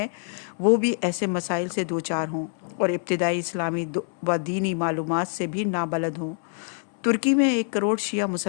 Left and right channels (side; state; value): right; silent; 61 dB below the other